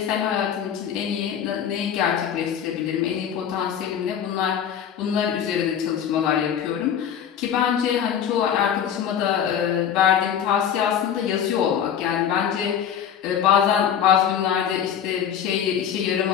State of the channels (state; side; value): quieter; right; 8.8 dB